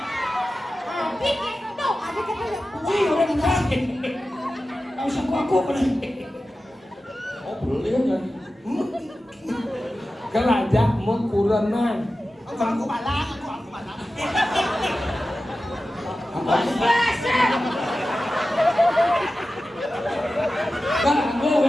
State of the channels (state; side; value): normal; both; correlation 0.94